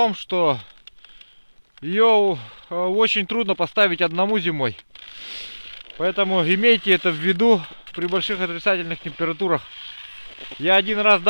что ее очень трудно поставить одному зимой. Поэтому имейте это в виду при больших отрицательных температурах. Я один раз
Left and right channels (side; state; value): both; inverted; correlation -1.00